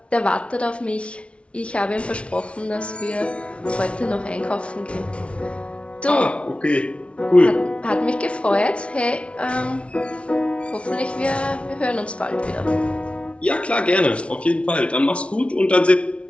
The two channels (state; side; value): late; right; 0.061 ms